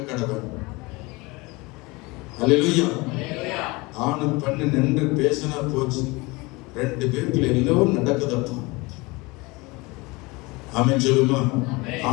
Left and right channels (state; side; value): quieter; right; 24.4 dB